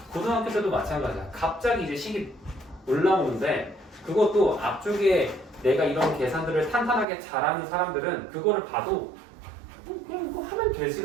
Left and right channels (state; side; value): drops out; left; at 7.1 s